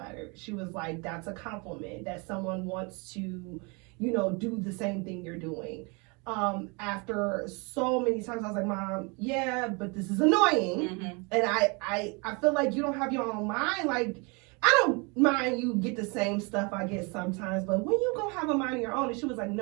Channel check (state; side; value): quieter; left; 30.5 dB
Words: She was like, "That's a compliment that someone wants to, do the same thing you're doing." After so many times, I was like, "Mom, yeah, but this is annoying," and I feel like you don't have your own mind, like. I don't mind you get the same stuff I get sometimes, but when you go have a mind of your own, and she was like,